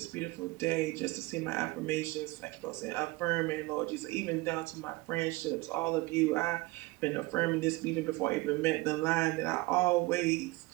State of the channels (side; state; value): left; quieter; 21.9 dB